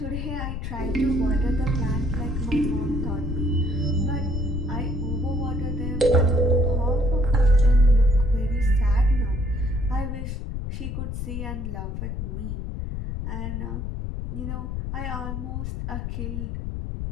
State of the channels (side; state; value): left; noise; rumble, 4 dB below the sound